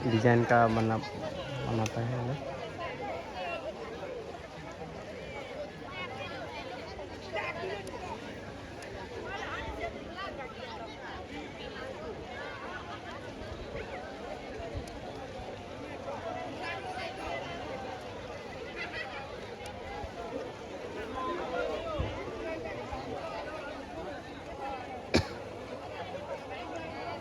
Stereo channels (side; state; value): both; identical; correlation 1.00